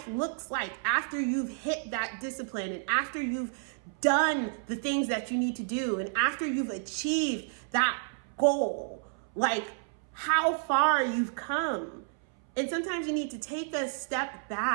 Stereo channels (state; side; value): silent; left; 57 dB below the other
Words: looks like after you've hit that discipline and after you've done the things that you need to do and after you've achieved that goal, like how far you've come. And sometimes you need to take a step